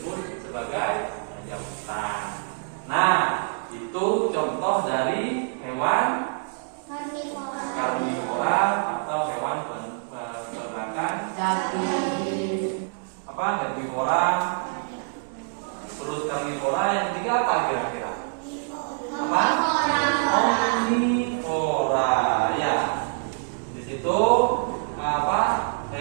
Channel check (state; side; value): silent; left; 61 dB below the other